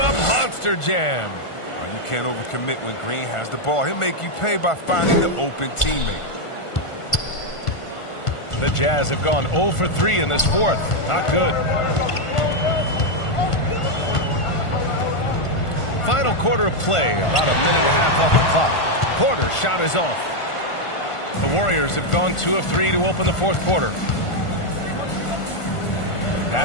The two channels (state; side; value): late; right; 1.5 ms